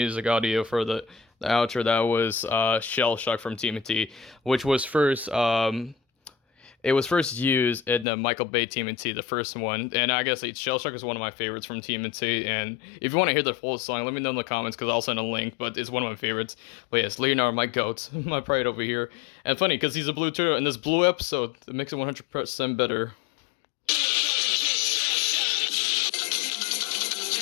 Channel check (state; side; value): drops out; right; at 8.1 s